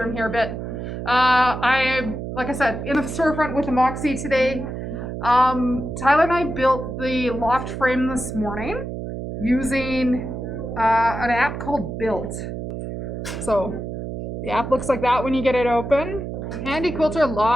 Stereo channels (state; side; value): noise; right; hum, 6 dB below the sound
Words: here a bit. Like I said, in the storefront with the Moxie today. Tyler and I built the loft frame this morning using an app called Built. So the app looks like that when you get it open. Handy Quilter